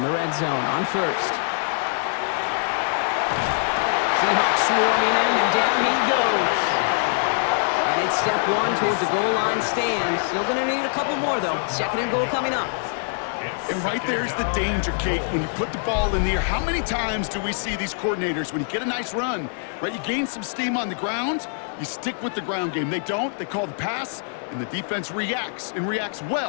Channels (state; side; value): silent; right; digital silence